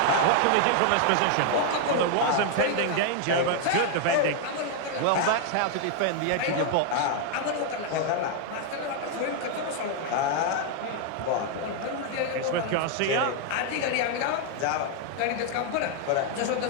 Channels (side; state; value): both; different; correlation 0.00